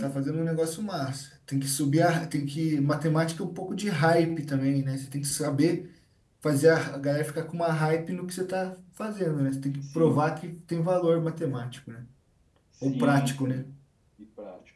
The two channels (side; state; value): both; identical; correlation 1.00